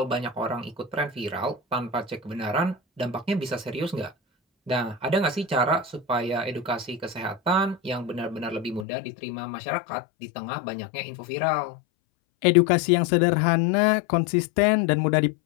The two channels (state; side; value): drops out; right; at 8.8 s